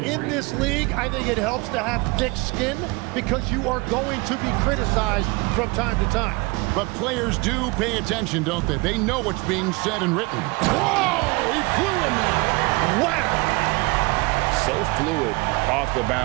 this league, I think it helps to have thick skin because you are going to be criticized from time to time. But players do pay attention, don't they? They know what's being said and written. Whoa! He flew in there. Wow! So fluid off the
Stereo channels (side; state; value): left; quieter; 25.9 dB